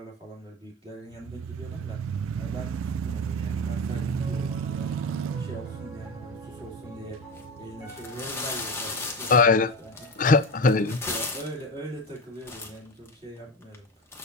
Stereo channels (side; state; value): both; normal; correlation 0.24